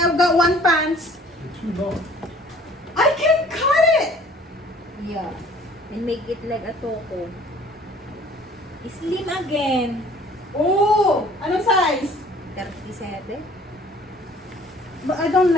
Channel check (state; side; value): normal; both; correlation 0.53